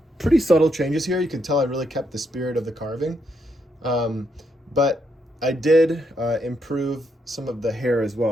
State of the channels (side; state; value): both; normal; correlation 0.78